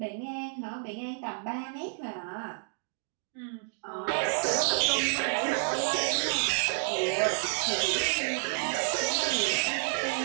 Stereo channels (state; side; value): silent; left; digital silence